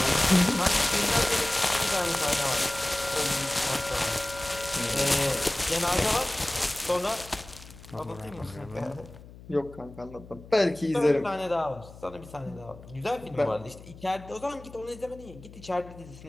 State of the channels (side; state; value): left; noise; hum, 18 dB below the sound